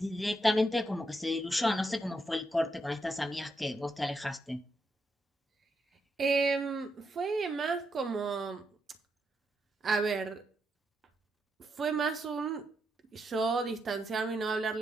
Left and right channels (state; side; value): normal; both; correlation 0.81